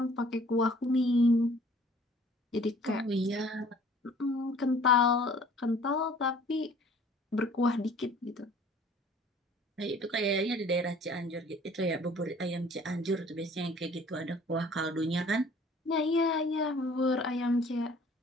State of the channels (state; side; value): normal; both; correlation 0.53